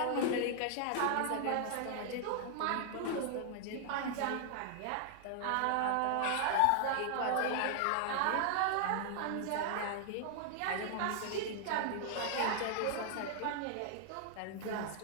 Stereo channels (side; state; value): both; different; correlation 0.00